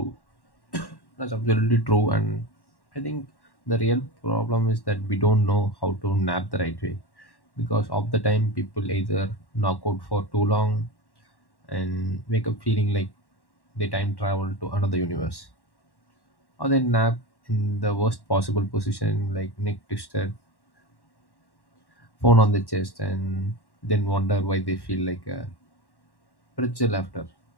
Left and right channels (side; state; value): right; late; 1.1 ms